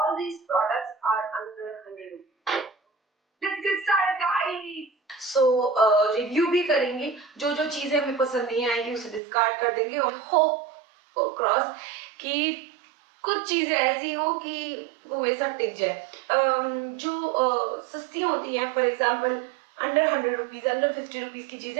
these products are under 100 rupees. Let's get started guys. So review भी करेंगे, जो जो चीजें हमें पसंद नहीं आएंगी उसे डिस्कार्ड कर देंगे और होप क्रॉस कि कुछ चीजें ऐसी हो कि वो मेरे साथ टिक जाए. जो सस्ती होती हैं, for example under 100 rupees, under 50 rupees की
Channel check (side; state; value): left; drops out; at 9.2 s